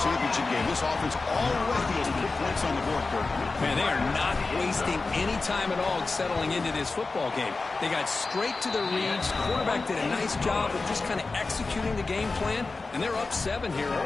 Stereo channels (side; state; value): right; quieter; 3.8 dB